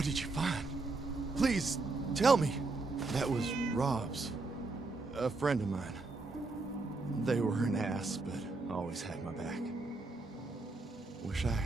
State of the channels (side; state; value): left; quieter; 3.6 dB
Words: did you find? Please, tell me. That was Rob's. A friend of mine. They were an ass, but always had my back. Wish I